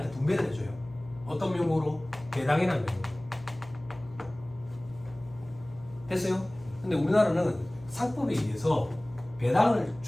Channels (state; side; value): noise; left; hum, 20 dB below the sound